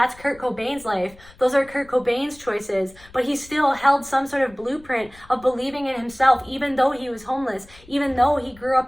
Kurt Cobain's life. Those are Kurt Cobain's choices. But he still held some sort of blueprint of believing in himself, even though he was homeless, even though he grew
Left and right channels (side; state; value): left; noise; rumble, 24 dB below the sound